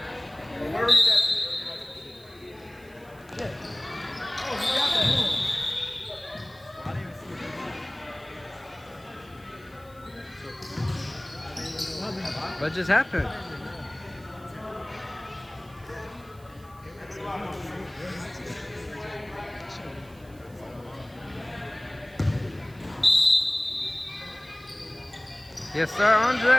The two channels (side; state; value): right; noise; hiss, 27 dB below the sound